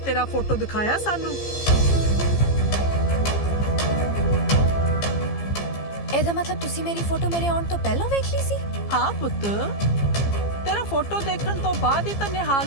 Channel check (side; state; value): right; late; 15 ms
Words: ਤੇਰਾ ਫੋਟੋ ਦਿਖਾਇਆ ਸਾਨੂੰ। ਇਹਦਾ ਮਤਲਬ ਤੁਸੀਂ ਮੇਰੀ ਫੋਟੋ ਮੇਰੇ ਆਉਣ ਤੋਂ ਪਹਿਲਾਂ ਵੇਖ ਲਈ ਸੀ? ਹਾਂ ਪੁੱਤ, ਤੇਰਾ ਫੋਟੋ ਦੇਖਣ ਤੋਂ ਬਾਅਦ ਹੀ ਤਾਂ